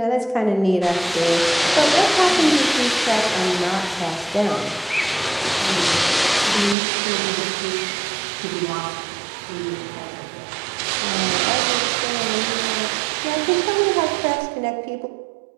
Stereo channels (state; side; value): drops out; left; at 6.8 s